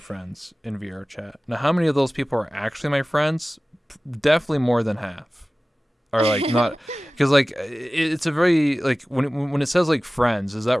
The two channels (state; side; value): normal; both; correlation 0.97